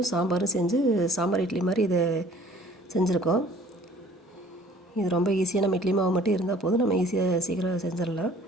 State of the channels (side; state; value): both; normal; correlation 0.52